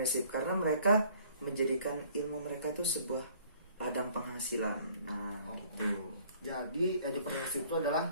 karena mereka menjadikan ilmu mereka itu sebuah ladang penghasilan. Nah, gitu. Jadi edupreneurship itu adalah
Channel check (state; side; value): inverted; both; correlation -0.56